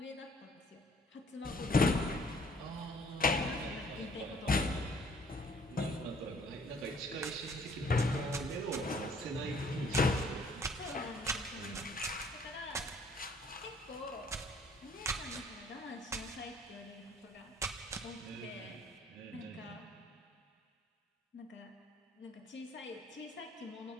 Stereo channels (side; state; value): both; normal; correlation 0.60